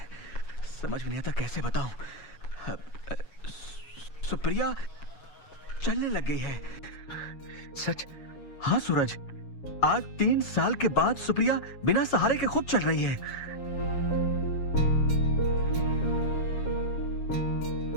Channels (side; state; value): right; late; 7.2 ms